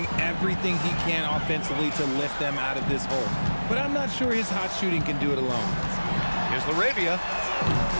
everything he can offensively to lift them out of this hole. but I'm not sure his hot shooting can do it alone. Here's LaRavia.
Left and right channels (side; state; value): both; inverted; correlation -1.00